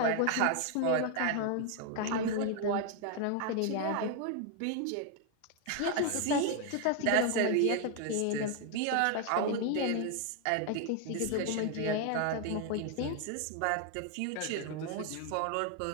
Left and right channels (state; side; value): different; both; correlation 0.00